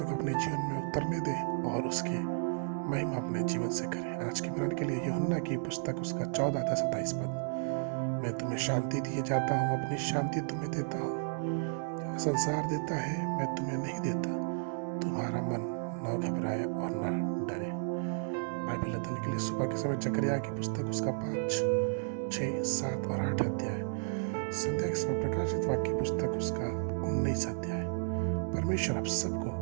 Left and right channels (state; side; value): silent; left; digital silence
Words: को अपने जीवन में उतरने दें और उसके महिमा अपने जीवन से करें। आज के मरण के लिए यूहन्ना की पुस्तक उसका 14 अध्याय 27 पद, मैं तुम्हें शांति दिए जाता हूँ, अपनी शांति तुम्हें देता हूँ, संसार देता है मैं तुम्हें नहीं देता। तुम्हारा मन न घबराए और न डरे। बाइबल अध्ययन के लिए सुबह के समय जकरिया की पुस्तक उसका 5, 6, 7 और 8 अध्याय, संध्या के समय प्रकाशित वाक्य पुस्तक उसका 19 अध्याय। परमेश्वर आप सबको